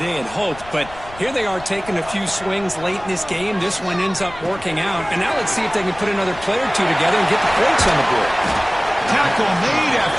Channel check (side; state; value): left; noise; rumble, 18 dB below the sound